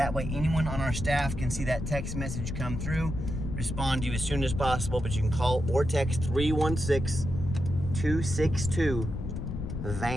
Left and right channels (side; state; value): left; noise; rumble, 5 dB below the sound